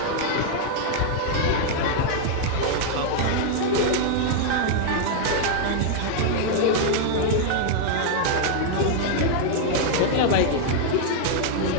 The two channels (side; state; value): both; different; correlation 0.00